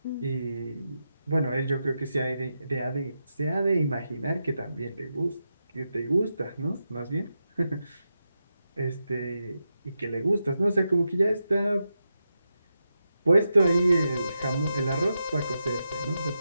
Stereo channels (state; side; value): inverted; both; correlation -0.88